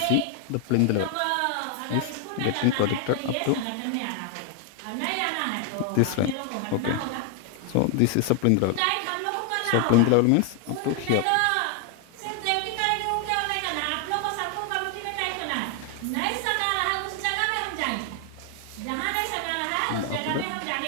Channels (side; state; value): both; different; correlation 0.01